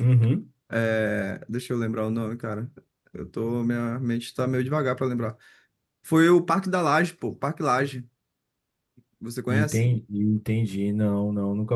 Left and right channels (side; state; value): both; identical; correlation 1.00